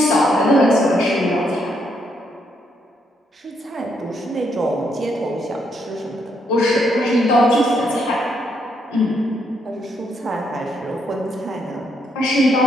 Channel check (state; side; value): normal; both; correlation 0.75